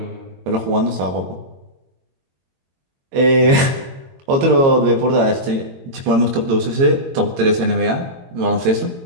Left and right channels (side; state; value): left; late; 22 ms